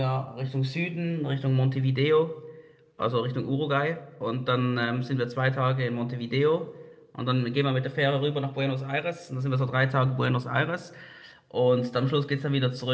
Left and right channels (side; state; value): both; identical; correlation 1.00